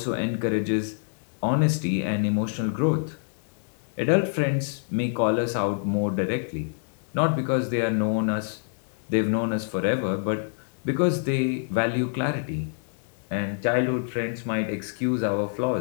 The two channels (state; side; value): silent; right; digital silence